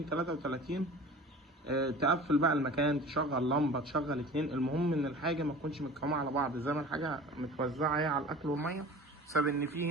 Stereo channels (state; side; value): normal; both; correlation 0.40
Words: 33. تقفل بقى المكان، تشغل لمبة، تشغل اتنين، المهم ان الحاجة ما تكونش متكومة على بعض، زي ما الحاجة متوزعة اهي على الاكل والمية، بسبب ان